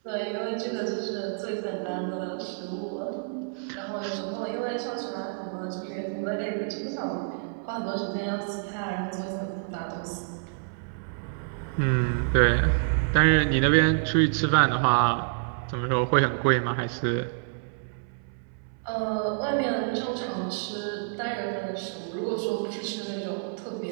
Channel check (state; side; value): silent; left; 59 dB below the other